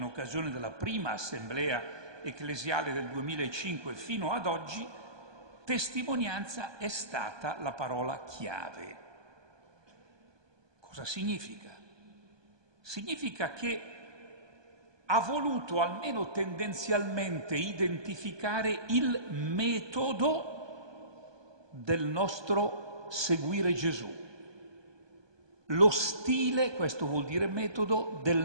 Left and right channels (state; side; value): late; left; 1.2 ms